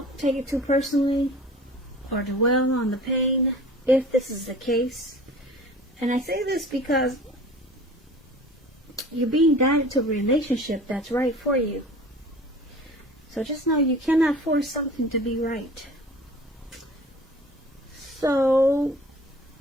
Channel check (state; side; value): normal; both; correlation 0.43